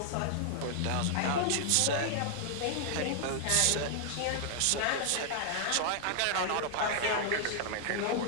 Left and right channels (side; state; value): both; different; correlation -0.01